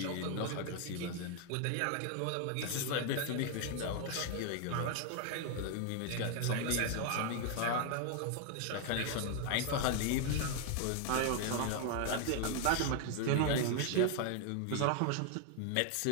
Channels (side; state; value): both; different; correlation 0.00